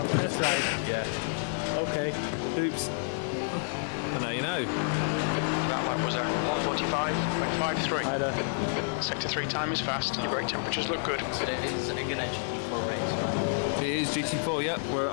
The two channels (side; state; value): right; silent; 58 dB below the other